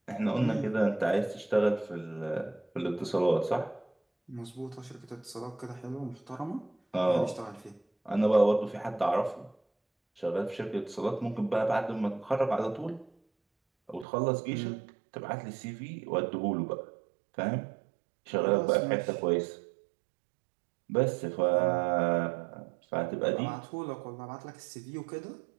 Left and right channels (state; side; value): drops out; left; at 14.1 s